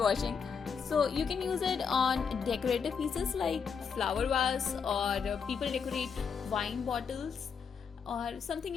So you can use it on decorative pieces like flower vase, or people decorate wine bottles or something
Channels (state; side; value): quieter; right; 6.3 dB